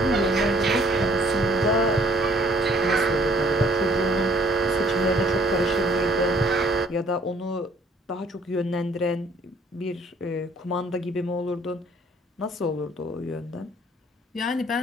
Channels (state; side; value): normal; both; correlation 0.59